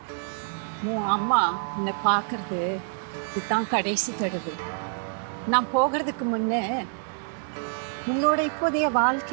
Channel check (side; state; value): left; silent; 60 dB below the other